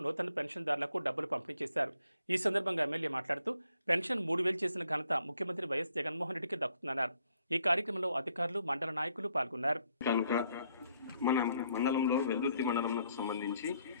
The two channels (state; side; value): inverted; both; correlation -0.70